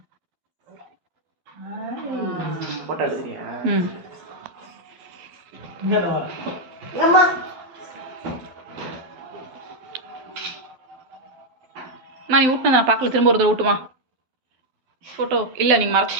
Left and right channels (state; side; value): late; left; 12 ms